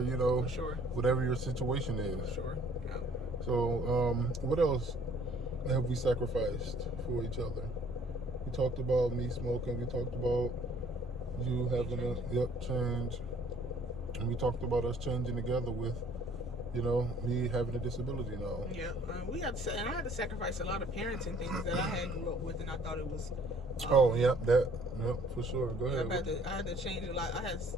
you know, whatever your situation is. For sure. Yeah. So, what else have we sacrificed for each other? We talked about me smoking. We talked about you having a change. And we talked about us changing together with, you know, me having a disability now. Yeah, we had to, and I had to sacrifice a lot of parenting things that I had grew up with, and I thought it was. For sure. Go ahead. I had to change a lot. I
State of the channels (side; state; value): both; normal; correlation 0.58